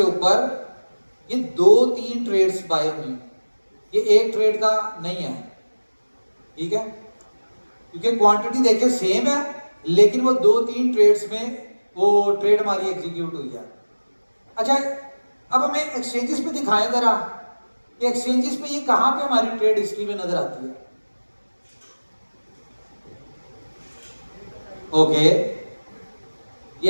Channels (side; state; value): both; inverted; correlation -1.00